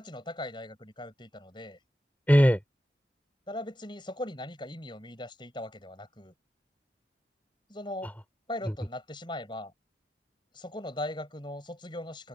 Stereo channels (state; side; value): normal; both; correlation 0.89